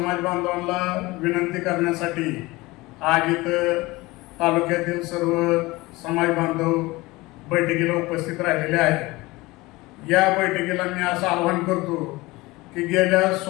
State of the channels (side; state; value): right; quieter; 21.3 dB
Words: बांधवांना विनंती करण्यासाठी आज इथं तालुक्यातील सर्व समाज बांधव बैठकीला उपस्थित राहिलेले आहेत। या बैठकीला मी असं आवाहन करतो की गेल्या